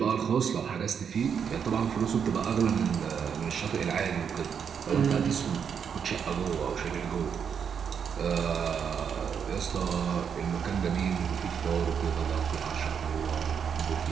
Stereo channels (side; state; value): left; quieter; 7.2 dB